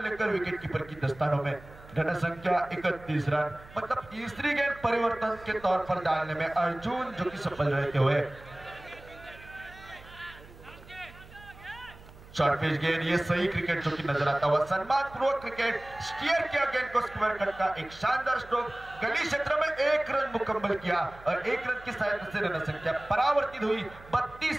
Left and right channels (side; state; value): right; noise; hum, 20 dB below the sound